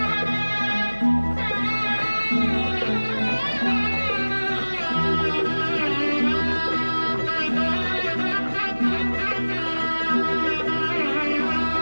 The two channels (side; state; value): both; inverted; correlation -1.00